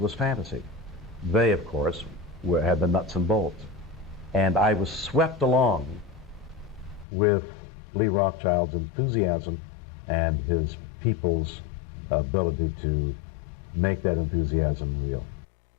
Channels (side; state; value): right; drops out; at 7.1 s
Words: fantasy. They, of course, had the nuts and bolts. And I was swept along with Lee Rothschild's enthusiasm and his people's ability to make that enthusiasm real.